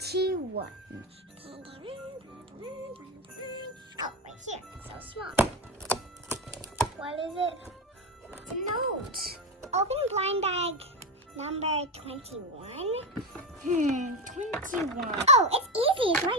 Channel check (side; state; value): both; normal; correlation 0.14